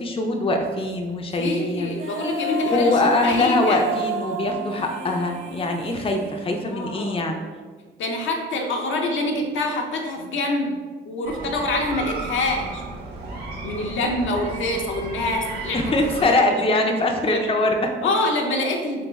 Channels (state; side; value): normal; both; correlation 0.32